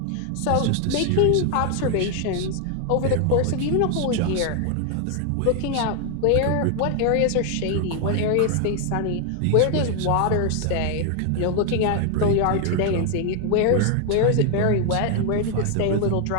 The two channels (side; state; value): both; different; correlation 0.00